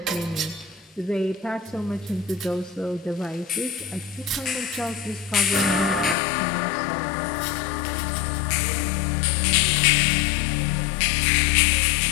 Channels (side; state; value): right; drops out; at 6.2 s